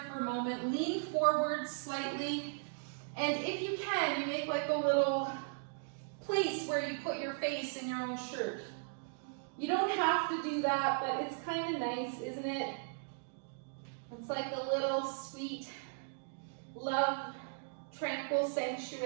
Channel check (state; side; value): silent; left; digital silence